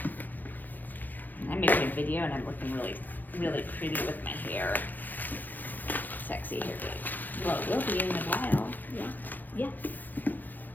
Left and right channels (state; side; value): late; right; 0.086 ms